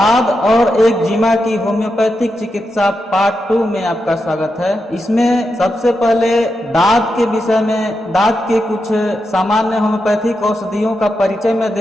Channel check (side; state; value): both; normal; correlation 0.86